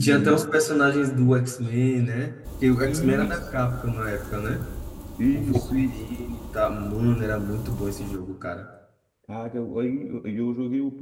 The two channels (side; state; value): both; identical; correlation 1.00